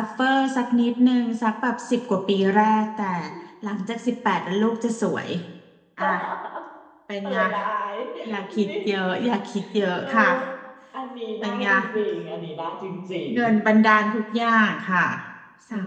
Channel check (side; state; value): both; identical; correlation 1.00